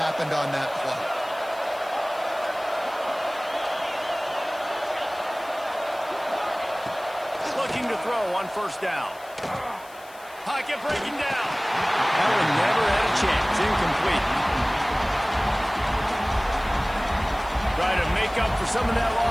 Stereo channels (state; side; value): noise; left; hiss, 22 dB below the sound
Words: on that play. Looking to throw on first down. Pocket breaking down. That one never had a chance. Incomplete. Try to make up for some of that